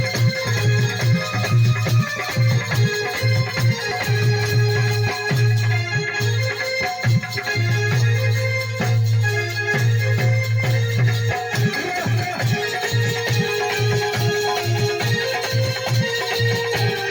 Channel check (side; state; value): both; identical; correlation 1.00